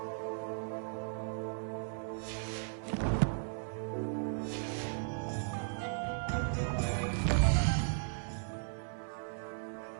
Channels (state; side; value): silent; left; digital silence